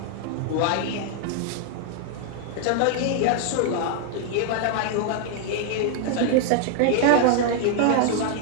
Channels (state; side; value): different; both; correlation 0.00